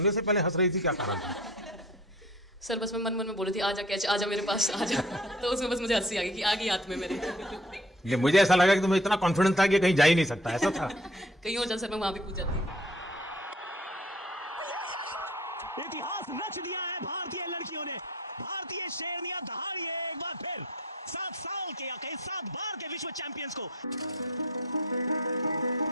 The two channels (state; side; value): normal; both; correlation 0.50